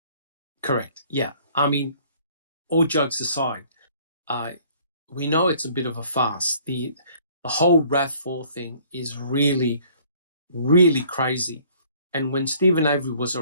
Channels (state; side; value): inverted; both; correlation -0.57